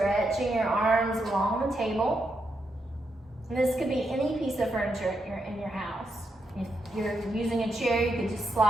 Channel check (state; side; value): normal; both; correlation 0.83